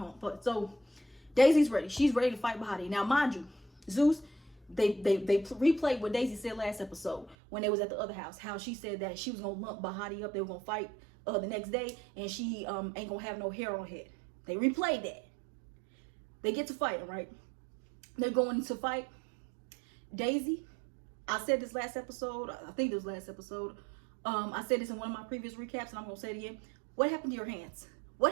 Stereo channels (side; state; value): left; drops out; at 7.4 s